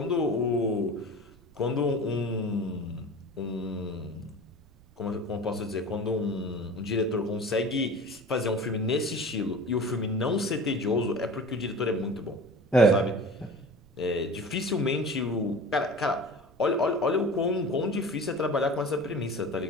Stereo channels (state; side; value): noise; right; rumble, 28 dB below the sound